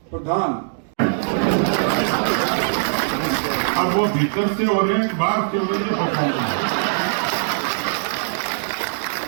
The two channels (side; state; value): left; silent; digital silence